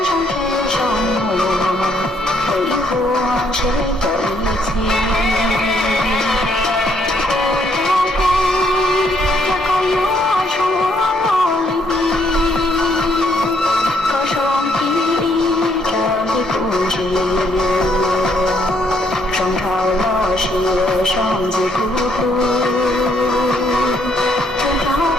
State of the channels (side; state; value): both; normal; correlation 0.70